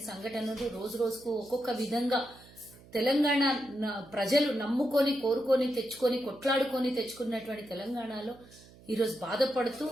సంఘటనలు రోజు రోజుకు ఒక్కొక్క విధంగా తెలంగాణ ప్రజలు నమ్ముకొని కోరుకొని తెచ్చుకొని కొట్లాడుకొని తెచ్చుకున్నటువంటి తెలంగాణలో ఈరోజు బాధపడుతూ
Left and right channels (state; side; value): noise; right; hum, 23 dB below the sound